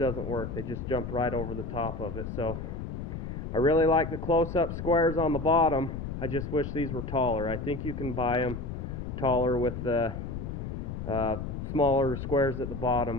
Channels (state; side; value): noise; left; rumble, 6 dB below the sound